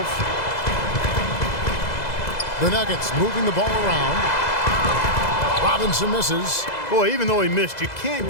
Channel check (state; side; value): late; right; 2.0 ms